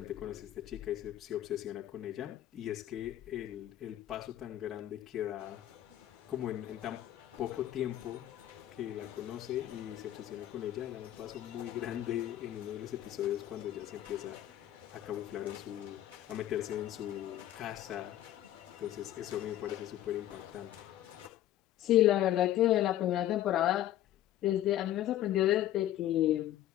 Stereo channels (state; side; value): quieter; right; 12.9 dB